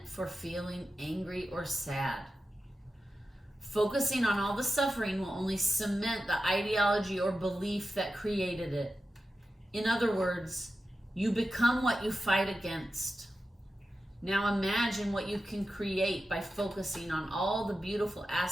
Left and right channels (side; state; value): both; normal; correlation 0.92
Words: for feeling angry or sad. Focusing on all the suffering will only cement the ideology or belief that created it. In other words, you become what you fight against. Now imagine what you can create by focusing on all the beautiful